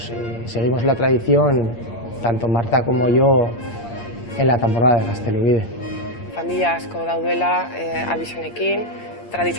seguimos la tradición, tanto Marta como yo, en la temporada de Gaztelubide. Familia asko daudela abizenekin,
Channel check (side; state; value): right; late; 8.8 ms